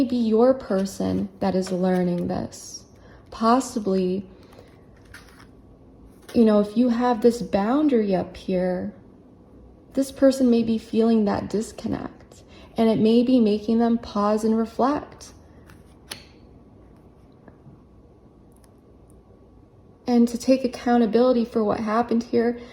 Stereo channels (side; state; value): both; identical; correlation 1.00